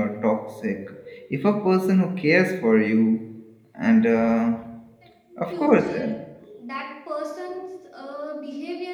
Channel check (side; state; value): both; identical; correlation 1.00